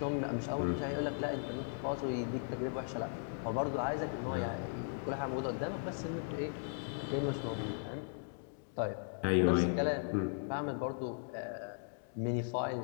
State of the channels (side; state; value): right; silent; digital silence